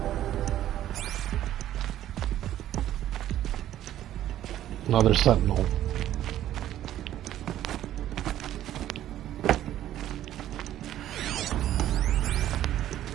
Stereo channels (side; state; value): left; quieter; 12.5 dB